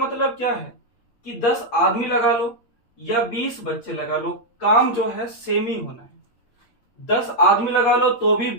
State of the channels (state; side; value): late; right; 8.5 ms